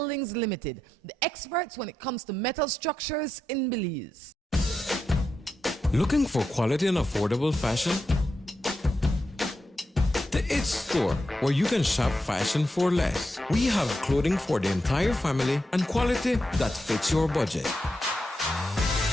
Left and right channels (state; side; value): normal; both; correlation 0.86